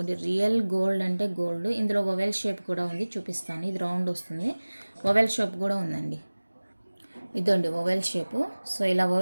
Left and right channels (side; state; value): both; inverted; correlation -1.00